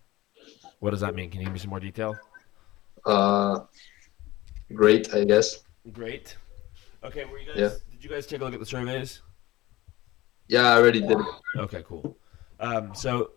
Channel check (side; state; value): right; quieter; 18.1 dB